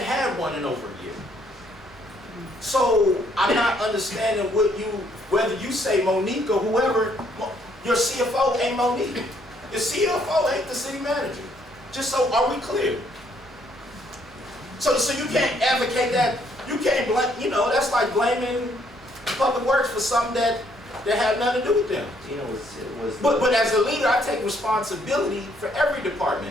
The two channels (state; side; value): normal; both; correlation 0.68